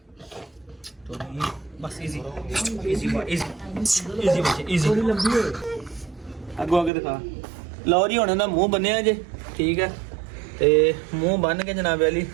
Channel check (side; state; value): left; drops out; at 6.9 s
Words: ਟੋਨੀ, ਬਸ ਈਜ਼ੀ ਅੱਗੋਂ ਅੱਗੇ ਦਿਖਾ। ਲਓ ਜੀ ਹੁਣ ਇਹਦਾ ਮੂੰਹ ਬੰਨਿਆ ਜੇ, ਠੀਕ ਹੈ। ਤੇ ਮੂੰਹ ਬੰਨ ਕੇ ਜਨਾਬ ਵਾਲੀ